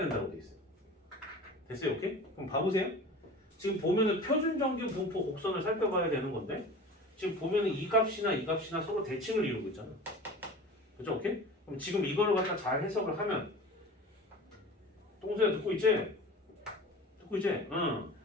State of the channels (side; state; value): both; normal; correlation 0.37